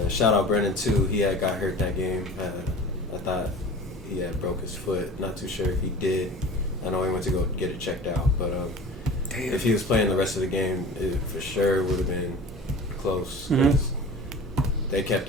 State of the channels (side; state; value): both; normal; correlation 0.39